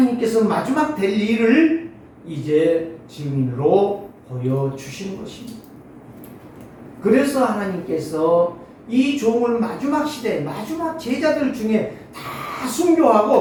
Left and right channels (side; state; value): both; identical; correlation 1.00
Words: 마지막 될 일을 이제 증인으로 보여주시는 것입니다. 그래서 하나님께서 이 종을 마지막 시대, 마지막 제자들 중에 다